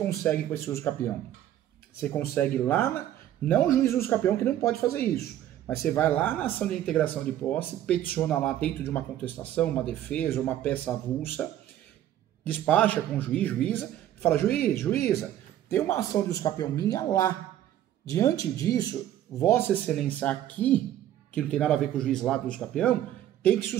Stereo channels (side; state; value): left; quieter; 12.1 dB